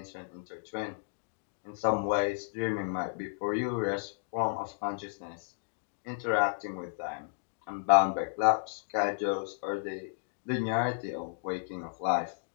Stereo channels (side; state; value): right; silent; digital silence